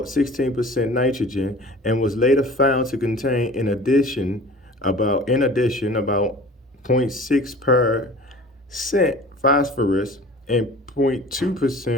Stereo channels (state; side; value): normal; both; correlation 0.43